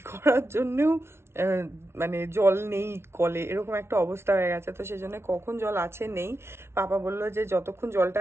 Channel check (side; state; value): left; late; 0.12 ms